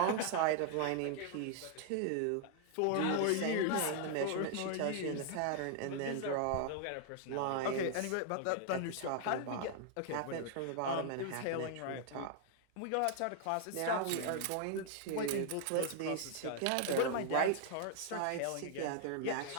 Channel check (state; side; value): different; both; correlation 0.00